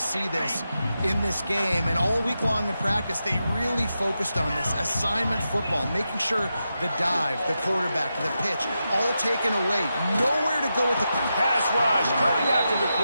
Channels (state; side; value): inverted; both; correlation -0.88